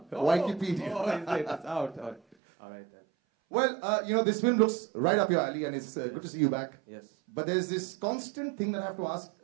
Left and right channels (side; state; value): left; drops out; at 2.4 s